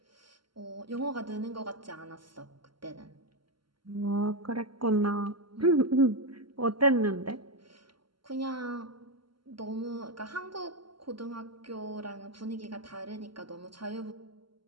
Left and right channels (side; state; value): left; late; 0.73 ms